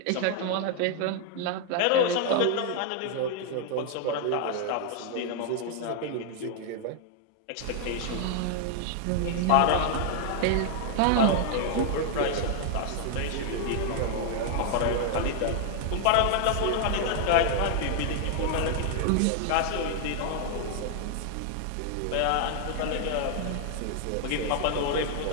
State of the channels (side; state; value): both; different; correlation 0.00